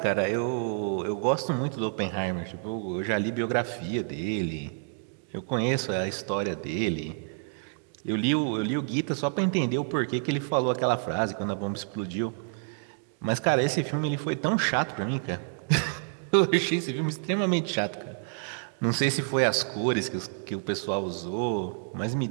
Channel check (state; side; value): silent; left; digital silence